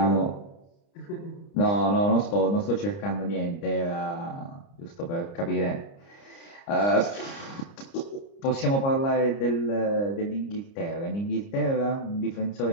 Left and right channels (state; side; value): late; right; 30 ms